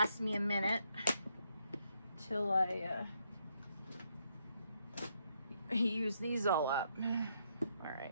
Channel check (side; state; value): both; inverted; correlation -0.76